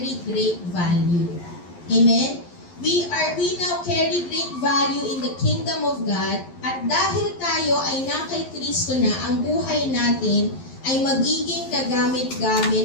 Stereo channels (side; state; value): right; late; 11 ms